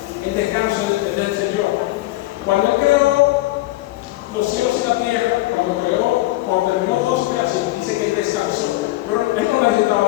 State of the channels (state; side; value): quieter; right; 18.1 dB